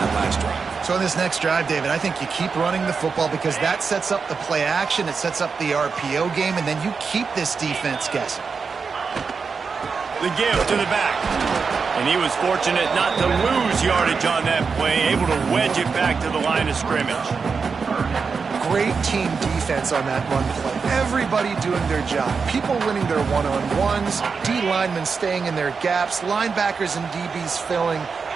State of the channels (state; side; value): quieter; left; 5.3 dB